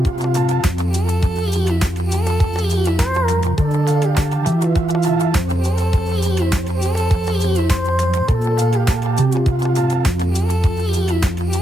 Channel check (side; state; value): both; normal; correlation 0.83